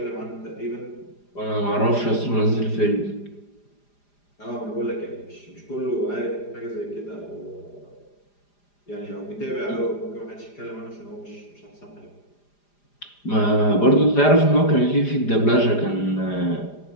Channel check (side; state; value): right; late; 4.9 ms